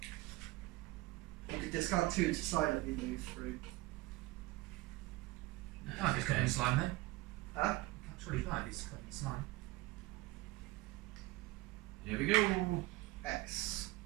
You could discard 2 to silently move through. Can't just covered in slime though. Huh? Surely you can't be covered in slime. Here we go. X.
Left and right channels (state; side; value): quieter; left; 20.0 dB